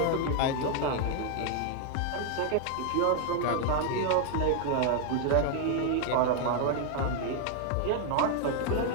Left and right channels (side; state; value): both; different; correlation 0.00